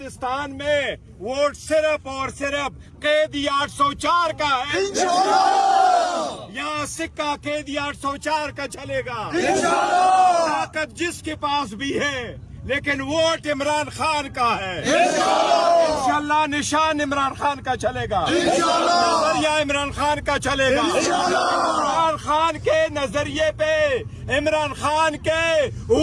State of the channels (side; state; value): both; identical; correlation 1.00